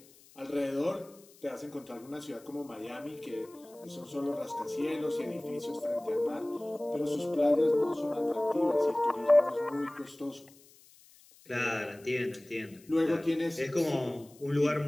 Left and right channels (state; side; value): noise; left; hiss, 26 dB below the sound